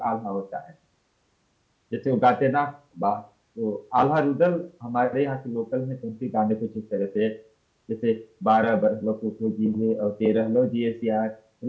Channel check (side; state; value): both; identical; correlation 1.00